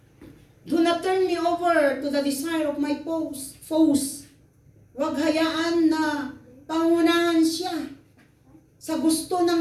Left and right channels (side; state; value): both; identical; correlation 1.00